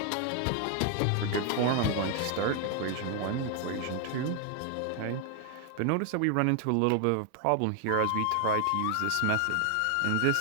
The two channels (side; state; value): both; different; correlation 0.00